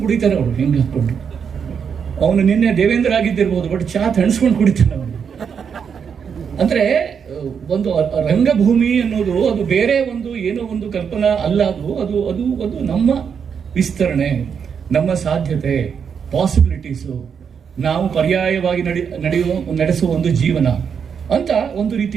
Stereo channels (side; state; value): left; quieter; 6.9 dB